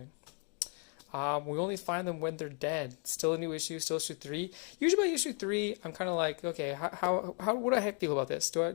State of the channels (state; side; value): quieter; right; 35.1 dB